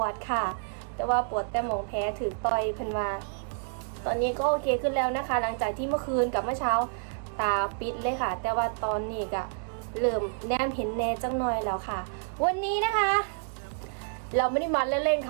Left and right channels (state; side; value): silent; left; 59 dB below the other